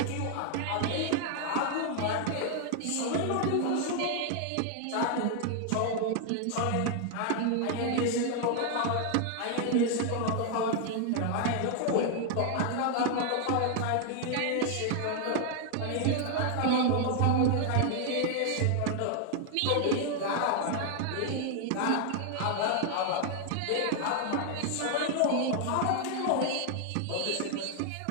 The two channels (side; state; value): both; different; correlation 0.00